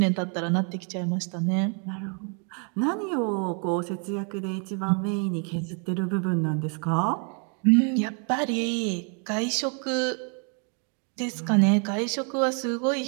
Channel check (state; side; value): quieter; left; 37.5 dB